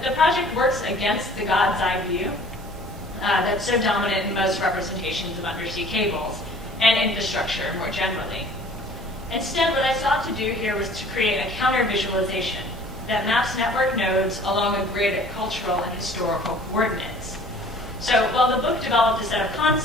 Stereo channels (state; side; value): normal; both; correlation 0.50